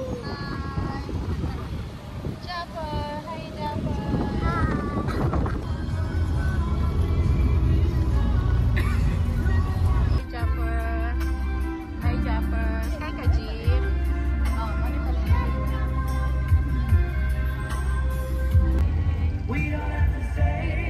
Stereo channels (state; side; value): identical; both; correlation 1.00